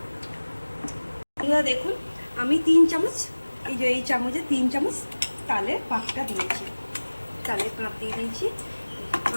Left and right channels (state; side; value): inverted; both; correlation -1.00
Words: দেখুন আমি 3 চামচ, এই যে এই চামচে 3 চামচ তালের পাকটা দিয়েছি, তালের কাপ দিয়ে দিয়েছি।